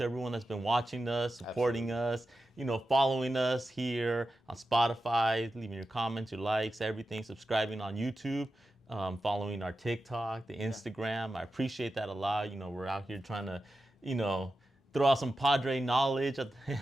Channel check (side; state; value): both; normal; correlation 0.91